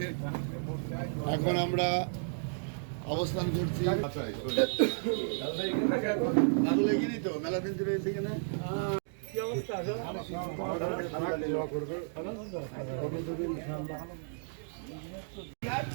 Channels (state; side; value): silent; left; digital silence